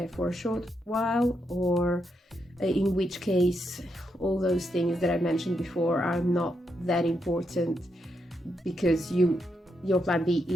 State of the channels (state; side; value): normal; both; correlation 0.81